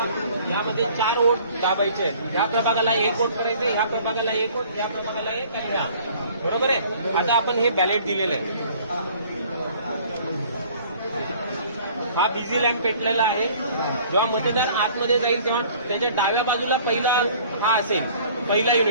यामध्ये 4 वोट दाबायचे आहेत. या प्रभागाला 1 वोट करायचं, ह्या प्रभागाला 1 वोट, या प्रभागाला 1 आणि ह्या. बरोबर आहे. आता आपण हे बॅलेट दिलेलं आहे. हा बिझी लॅम्प पेटलेला आहे. जेव्हा मतदार आतमध्ये जाईल तेव्हा त्याच्या डाव्या बाजूला पहिला हा असेल, पहिला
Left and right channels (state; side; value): inverted; both; correlation -0.53